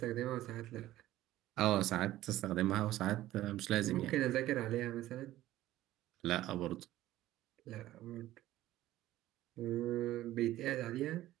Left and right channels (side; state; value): left; quieter; 15.0 dB